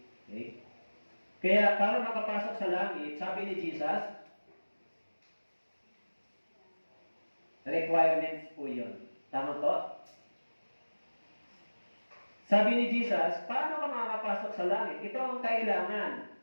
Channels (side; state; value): both; inverted; correlation -1.00